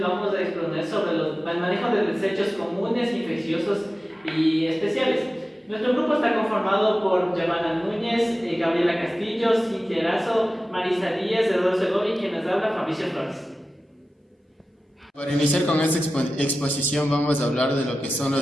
a exponer sobre el manejo de desechos comunes, infecciosos y especiales. Nuestro grupo está conformado por Giovanna Núñez, Gabriela Castillo, Cintia Erazo, Marisa Díaz, Eduardo Segovia y quien nos habla, Fabricio Flores. Para iniciar con esta exposición vamos a hablar de lo que son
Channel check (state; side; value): normal; both; correlation 0.95